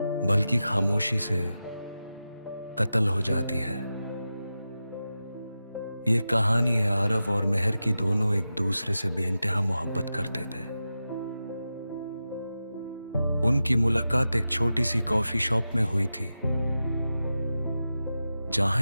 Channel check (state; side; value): inverted; both; correlation -0.92